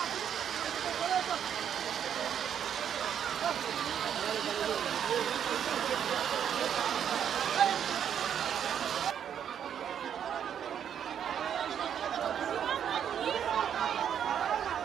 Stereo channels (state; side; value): quieter; left; 8.8 dB